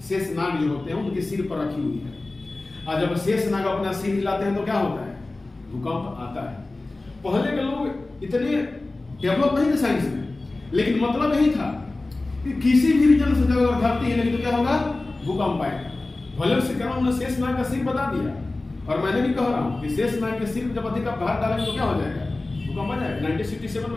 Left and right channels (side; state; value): right; quieter; 3.1 dB